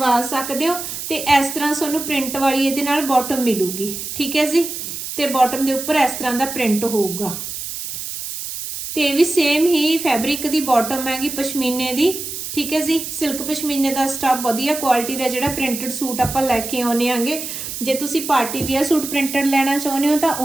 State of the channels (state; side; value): noise; right; hiss, 7 dB below the sound